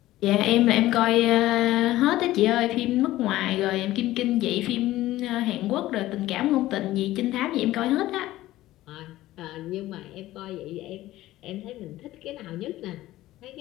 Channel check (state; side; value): quieter; right; 15.8 dB